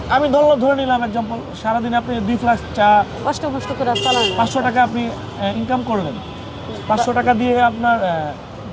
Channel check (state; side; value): identical; both; correlation 1.00